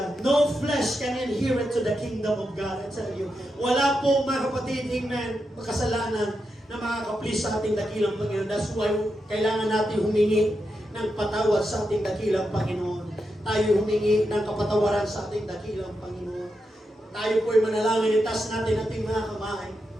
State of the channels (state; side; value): normal; both; correlation 0.86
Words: No flesh can inherit to the kingdom of God. I tell you. Wala po, mga kapatid, amen, makasalanan na makakaplis sa ating dakilang Panginoon. That's why kailangan natin humingi ng patawad sa ating dakilang Panginoon. Tayo humingi ng kapatawaran sa ating dakilang Panginoon. Tayo po'y manalangin, itas natin ating mga kamay.